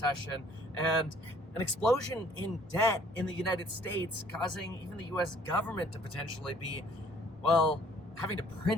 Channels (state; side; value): normal; both; correlation 0.58